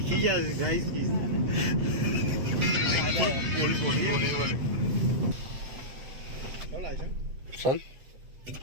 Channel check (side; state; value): left; late; 7.9 ms